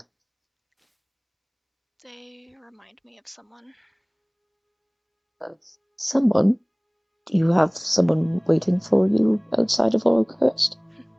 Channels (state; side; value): identical; both; correlation 1.00